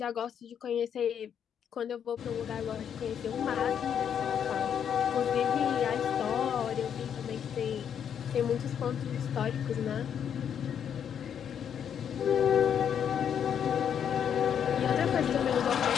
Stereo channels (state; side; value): quieter; right; 8.4 dB